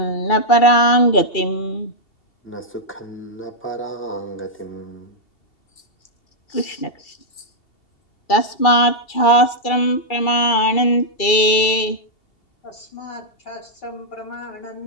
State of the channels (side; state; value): right; late; 2.3 ms